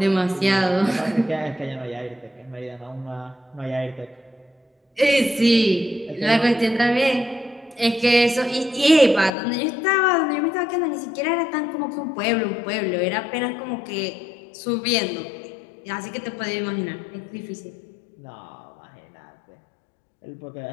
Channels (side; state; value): right; drops out; at 9.3 s